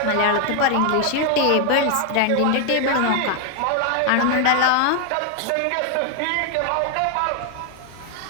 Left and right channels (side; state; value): both; different; correlation 0.01